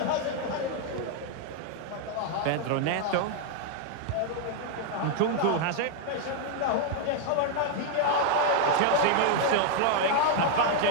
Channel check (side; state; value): both; different; correlation 0.00